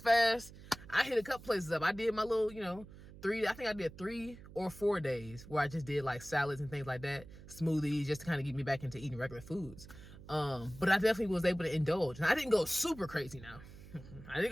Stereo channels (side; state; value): right; noise; hum, 17 dB below the sound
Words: fast, I hit a couple places up. I did my little, you know, I think I did 3 or 4 days where I just did like salads and things like that, smoothies, just to kind of get me back into eating regular foods. But I definitely was able to indulge. And I didn't go super crazy now. I didn't